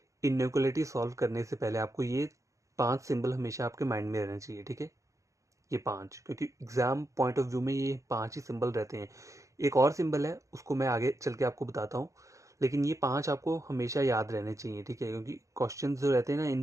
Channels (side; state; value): left; late; 0.15 ms